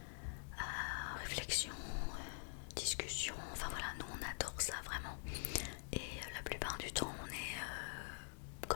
à réflexion, discussion, enfin voilà, nous on adore ça vraiment. Et la plupart du temps on est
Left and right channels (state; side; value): silent; right; digital silence